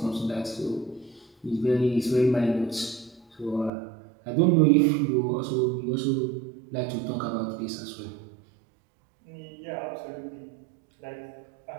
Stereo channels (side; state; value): left; drops out; at 3.7 s